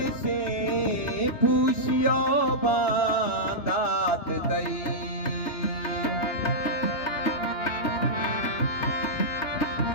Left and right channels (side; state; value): right; late; 3.3 ms